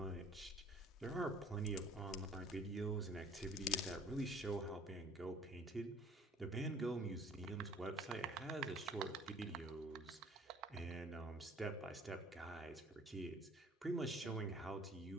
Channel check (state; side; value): normal; both; correlation 0.53